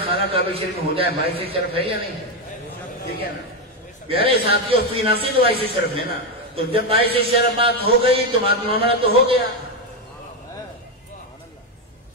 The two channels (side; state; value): both; normal; correlation 0.08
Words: خانہ کعبہ شریف میں ہو جائے باعث شرف ہے یا نہیں ہے؟ ٹھیک ہے نا پیارے ساتھیوں، فی نفس ہی تو باعث شرف ہے نا، تو جب باعث شرف بات ہو گئی تو بات معاملہ تو ہو گیا۔